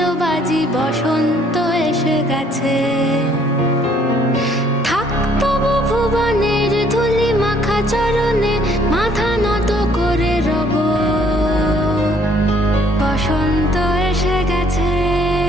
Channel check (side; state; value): both; normal; correlation 0.63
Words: বাজি, বসন্ত এসে গেছে। থাক তবু ভুবনের ধুলি মাখা চরণে, মাথা নত করে রব। বসন্ত এসে গেছে,